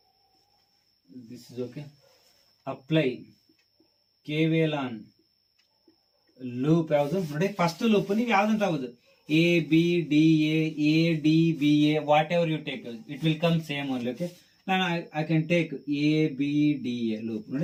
This is okay. Apply KVL on loop ಯಾವುದು ನೋಡಿ. First loop ನೀವು ಯಾವ್ದಂತ ಆಗುದು, A B D A D B A, whatever you take, it will come same only. Okay, now I can take A B D A loop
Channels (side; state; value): both; identical; correlation 1.00